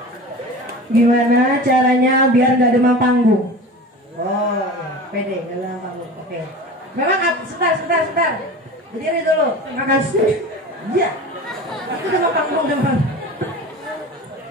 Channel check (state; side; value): normal; both; correlation 0.35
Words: Gimana caranya biar nggak demam panggung? Oh, ya. Pede, nggak demam panggung. Oke. Memang sebentar. Berdiri dulu. Makasih. Iya. Itu demam panggung demam.